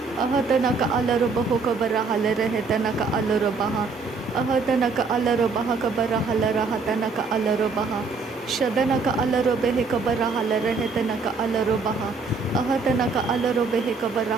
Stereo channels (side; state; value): left; quieter; 4.4 dB